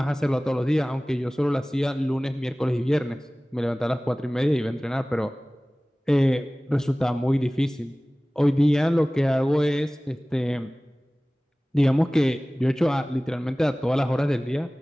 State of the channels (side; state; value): both; normal; correlation 0.98